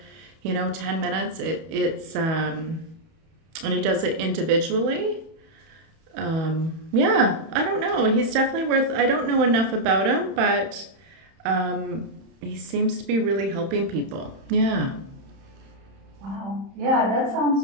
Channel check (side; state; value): left; late; 31 ms